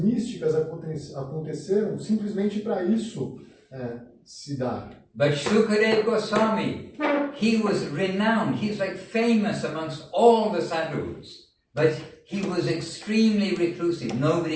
aconteceram simplesmente para isso se dar. But Shukadeva Goswami, he was renowned. He's like famous amongst all the sadhus. But he was extremely reclusive.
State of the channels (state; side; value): identical; both; correlation 1.00